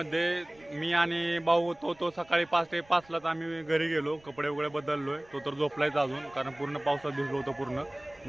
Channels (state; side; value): noise; right; rumble, 28 dB below the sound